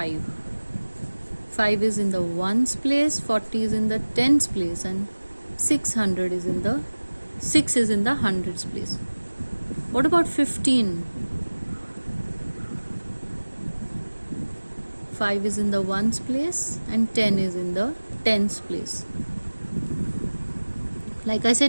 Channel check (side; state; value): both; inverted; correlation -1.00